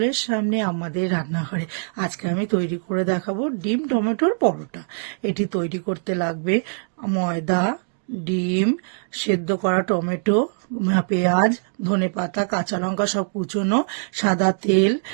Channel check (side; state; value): left; silent; digital silence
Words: সামনে আমাদের রান্নাঘরে। আজকে আমি তৈরি করে দেখাবো ডিম টমেটোর পরোটা। এটি তৈরি করতে লাগবে ময়দা, ডিম, সেদ্ধ করা টমেটো, পেঁয়াজ, ধনেপাতা, কাঁচা লঙ্কা সব কুচোনো, সাদা তেল,